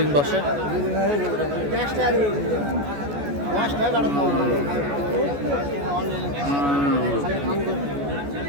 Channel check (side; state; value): left; late; 14 ms